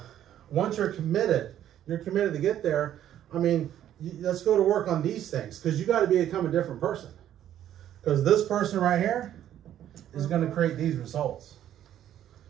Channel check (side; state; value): left; quieter; 11.3 dB